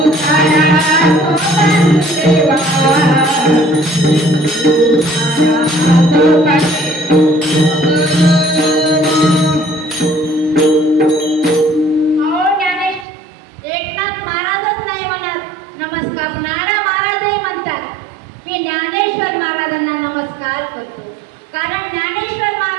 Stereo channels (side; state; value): left; drops out; at 13.1 s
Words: एकनाथ महाराजच नाही म्हणत नमस्कार, नारा महाराजही म्हणतात की ज्ञानेश्वर महाराजांना नमस्कार करतो. कारण ज्ञानेश्वर